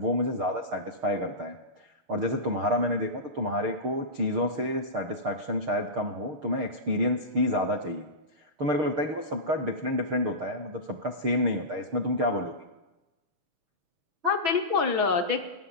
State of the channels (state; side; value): late; left; 6.6 ms